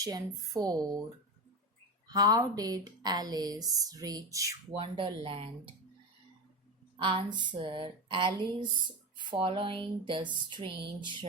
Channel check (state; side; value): normal; both; correlation 0.20